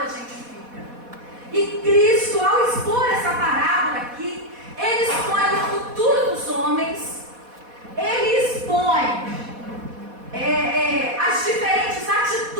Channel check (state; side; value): late; left; 4.1 ms